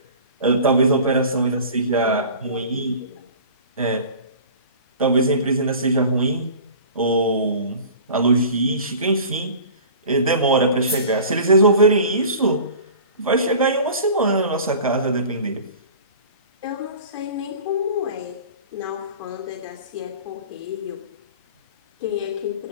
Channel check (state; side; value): inverted; both; correlation -0.41